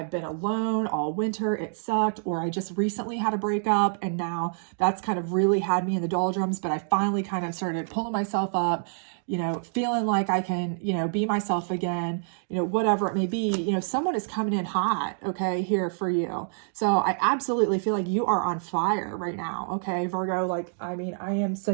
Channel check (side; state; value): left; silent; digital silence